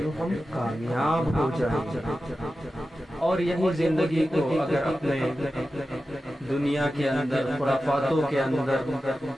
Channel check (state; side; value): normal; both; correlation 0.93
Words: ہم کامیاب ہو جائیں گے۔ اور یہی زندگی کو اگر اپنے دنیا کے اندر خرافاتوں کے اندر